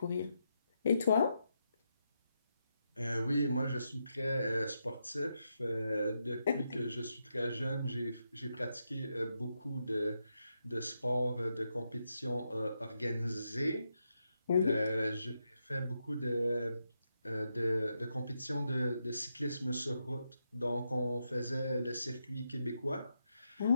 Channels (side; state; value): both; inverted; correlation -0.84